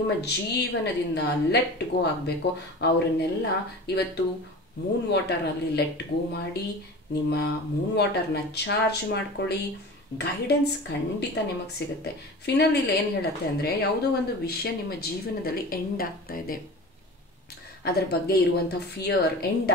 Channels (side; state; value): both; normal; correlation 0.35